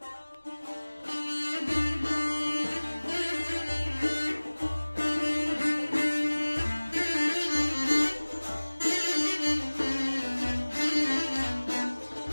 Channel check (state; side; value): inverted; both; correlation -1.00